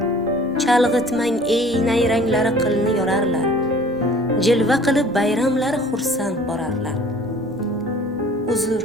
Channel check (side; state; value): both; normal; correlation 0.49